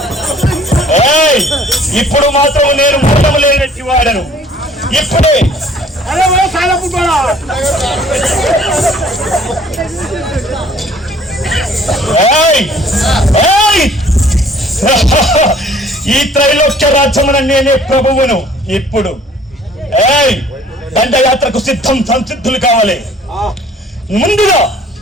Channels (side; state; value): both; normal; correlation 0.55